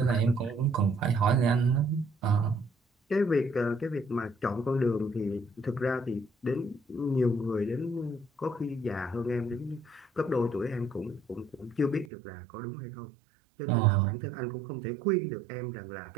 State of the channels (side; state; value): left; drops out; at 12.1 s